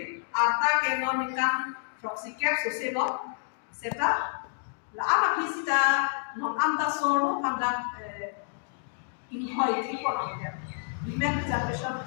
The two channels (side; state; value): right; silent; digital silence